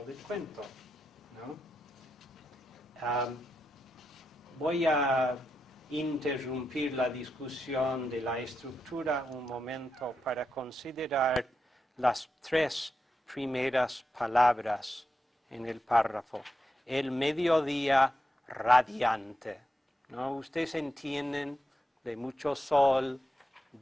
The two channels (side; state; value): both; normal; correlation 0.87